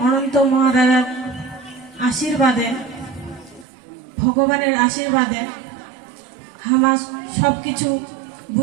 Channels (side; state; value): left; drops out; at 3.7 s